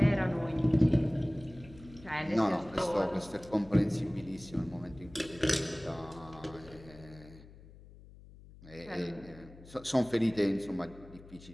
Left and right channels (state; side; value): noise; left; hum, 20 dB below the sound